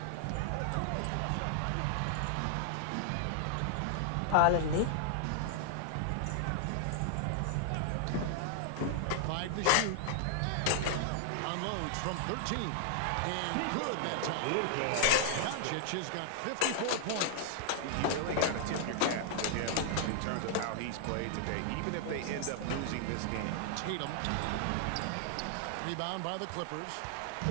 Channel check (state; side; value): different; both; correlation 0.00